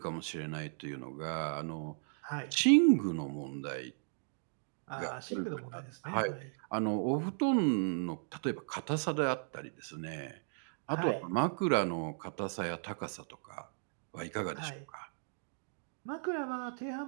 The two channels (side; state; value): left; silent; digital silence